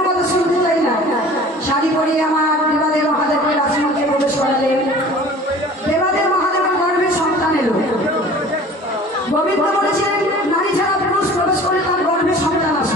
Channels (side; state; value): both; normal; correlation 0.45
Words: কথা শুনতে চাই না। শাড়ি পরিয়ে আমার দেবাদেব মহাদেবকে রাজমন্ত্রে প্রবেশ করালেন। দেবাদেব গোবিন্দ বলেছিলেন নারী ছাড়া পুরুষ প্রবেশ করে তার গর্ভে সন্তান